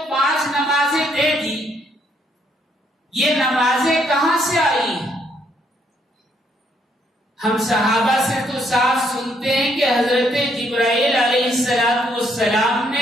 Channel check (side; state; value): both; normal; correlation 0.71